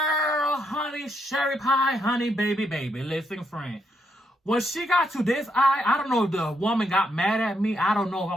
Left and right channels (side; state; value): both; normal; correlation 0.77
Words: honey, cherry pie, honey, baby. Listen, friend. When she got to this eye, I don't know if the woman got mad at me. I don't know if I